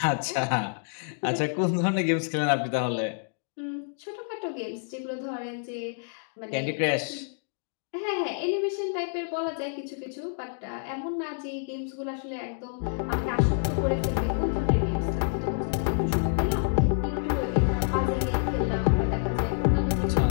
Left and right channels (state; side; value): silent; right; digital silence